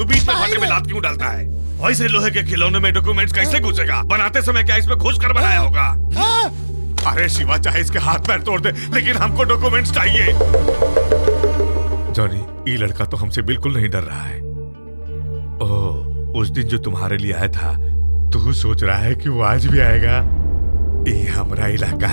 बीच में भाटे में लात क्यों डालता है? वैसे लोहे के खिलौने में डॉक्यूमेंट्स कैसे घुसेगा? बनाते समय क्या इसमें घुस कर बनाया होगा? अरे शिवा, चाहे इसके हाथ पैर तोड़ दे, लेकिन हमको डॉक्यूमेंट्स चाहिए। जॉनी, ये लड़का तो हमसे बिल्कुल नहीं डर रहा है। ओह, उस दिन जो तुम्हारे लिए आया था, तू सोच रहा है कि वो आज भी आएगा? ये हमारा इलाका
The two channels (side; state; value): both; inverted; correlation -1.00